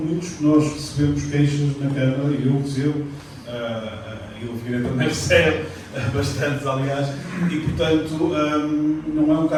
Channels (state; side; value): identical; both; correlation 1.00